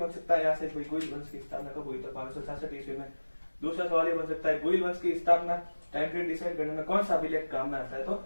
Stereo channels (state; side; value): inverted; both; correlation -1.00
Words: सकता है यहाँ से, गुइल वंश की स्थापना कब हुई? तो 566 ईस्वी में। दूसरा सवाल ये बन सकता है, गुइल वंश की स्थापना टाइम पीरियड डिसाइड करने में कौन सा अभिलेख काम में आता है? तो